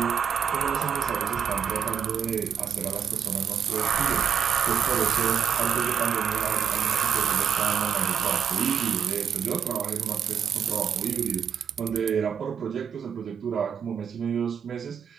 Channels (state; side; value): quieter; left; 7.6 dB